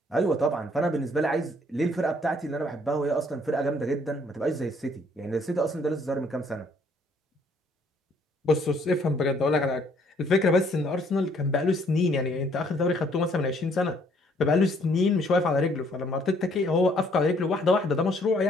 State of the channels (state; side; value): normal; both; correlation 0.64